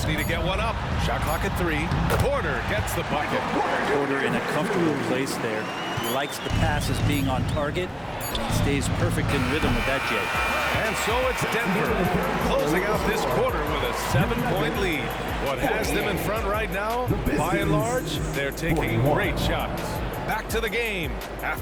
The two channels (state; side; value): identical; both; correlation 1.00